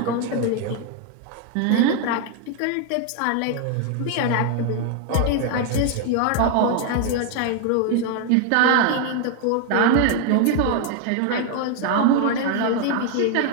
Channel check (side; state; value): both; different; correlation 0.01